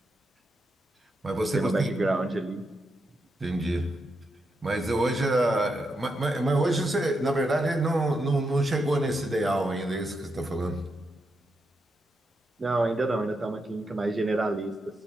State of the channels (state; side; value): normal; both; correlation 0.84